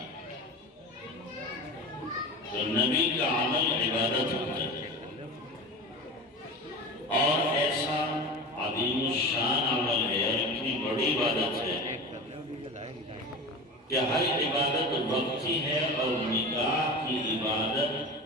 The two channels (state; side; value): normal; both; correlation 0.30